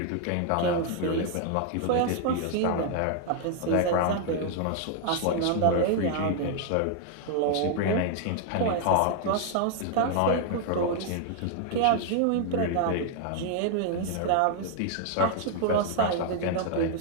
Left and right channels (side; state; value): both; different; correlation 0.00